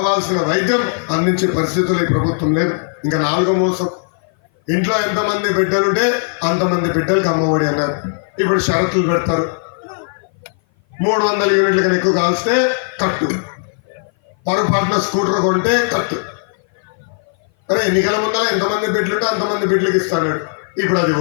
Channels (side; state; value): right; silent; 57 dB below the other